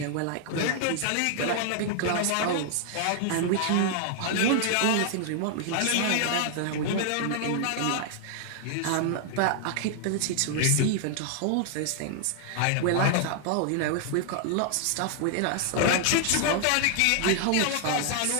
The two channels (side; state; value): both; different; correlation 0.00